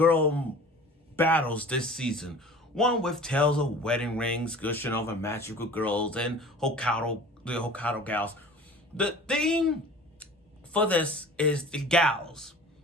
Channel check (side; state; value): both; normal; correlation 0.43